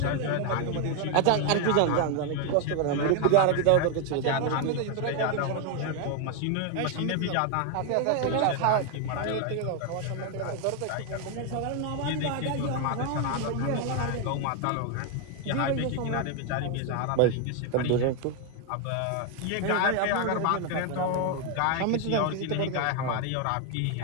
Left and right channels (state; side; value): different; both; correlation 0.01